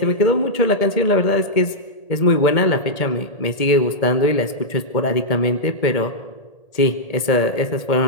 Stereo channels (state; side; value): late; right; 1.8 ms